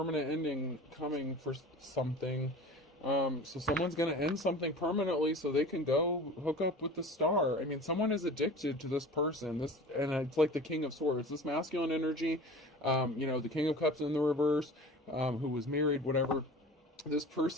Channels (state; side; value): normal; both; correlation 0.38